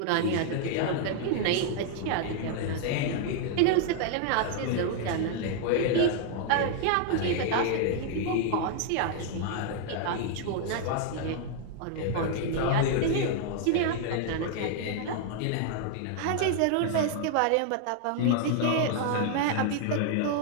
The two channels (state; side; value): different; both; correlation 0.00